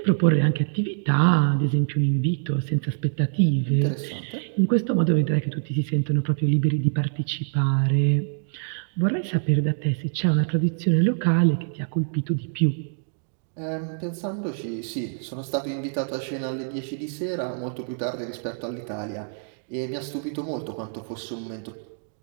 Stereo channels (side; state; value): left; silent; digital silence